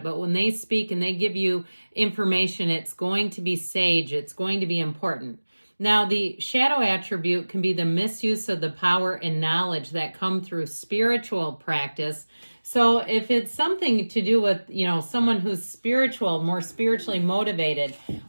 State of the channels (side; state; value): both; inverted; correlation -1.00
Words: but when they speak and they give you information, it's going to be sage, it's going to be important. Now, the shadow attribute can be the misuse of the power and knowledge that come through spiritual practice. So if it's something to do with, someone who's spiritual, more spiritually motivated,